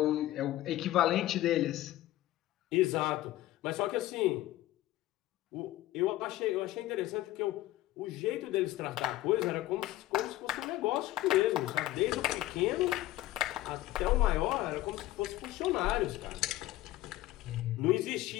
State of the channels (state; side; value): quieter; right; 15.6 dB